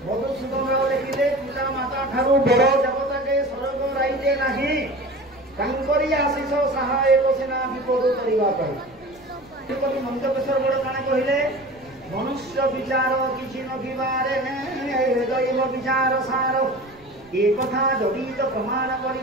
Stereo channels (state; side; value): noise; right; rumble, 28 dB below the sound